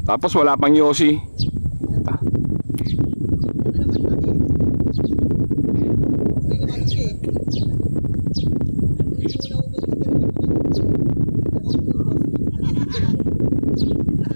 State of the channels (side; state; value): both; inverted; correlation -1.00